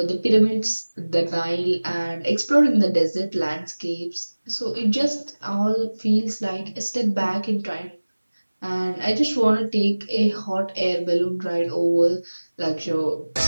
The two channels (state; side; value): inverted; both; correlation -1.00